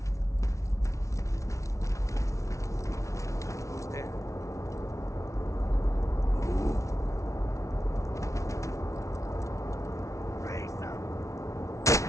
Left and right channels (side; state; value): right; late; 0.15 ms